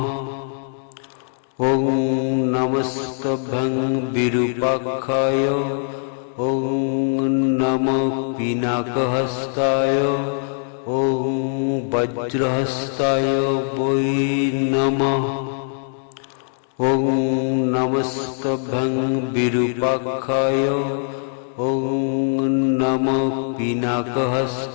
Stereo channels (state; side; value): silent; right; digital silence